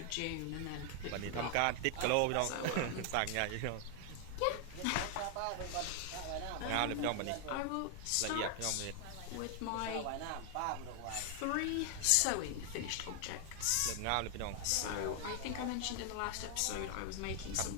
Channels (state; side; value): different; both; correlation 0.00